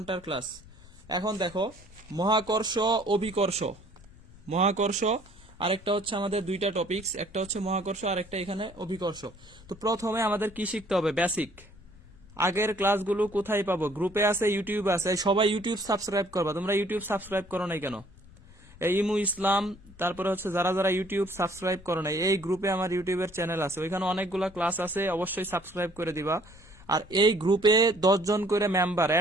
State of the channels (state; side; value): noise; left; rumble, 22 dB below the sound